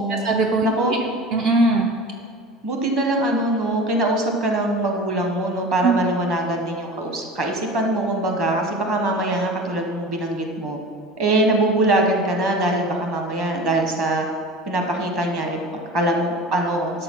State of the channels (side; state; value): both; normal; correlation 0.35